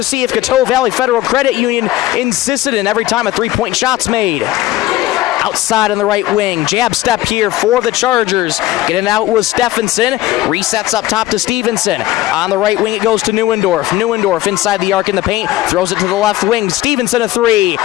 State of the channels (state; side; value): quieter; right; 15.7 dB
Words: of Coteau Valley Federal Credit Union in Sisseton every time a three-point shot's made. Outside on the right wing, jab step here for the Chargers. Getting out was Stephenson. Resets up top to Stevenson. On the right wing, it goes to Neuendorf. Neuendorf inside the arc in the paint, throws it to the left wing. Stevenson a three.